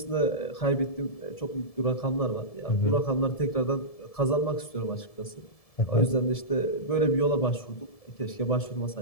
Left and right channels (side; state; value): right; late; 1.7 ms